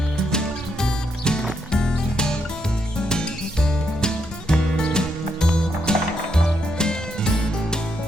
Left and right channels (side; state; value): both; normal; correlation 0.78